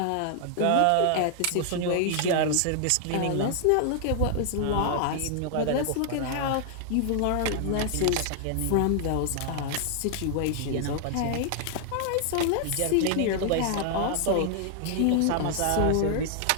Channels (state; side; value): different; both; correlation 0.00